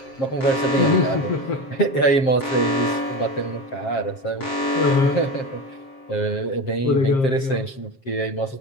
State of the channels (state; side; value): late; right; 7.5 ms